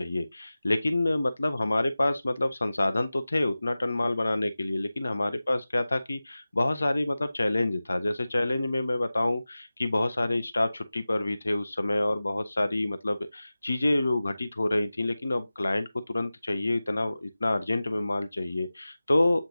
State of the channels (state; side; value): inverted; both; correlation -0.97